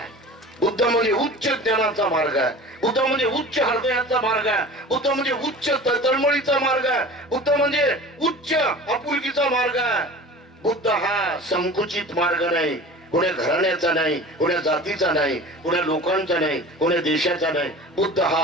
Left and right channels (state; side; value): normal; both; correlation 0.38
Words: बुद्ध म्हणजे उच्च ज्ञानाचा मार्ग आहे. बुद्ध म्हणजे उच्च हृदयाचा मार्ग आहे. बुद्ध म्हणजे उच्च तळमळीचा मार्ग आहे. बुद्ध म्हणजे उच्च आपुलकीचा मार्ग आहे. बुद्ध हा संकुचित मार्ग नाही, कोण्या घराण्याचा नाही, कोण्या जातीचा नाही, कोण्या लोकांचा नाही, कोण्या देशाचा नाही. बुद्ध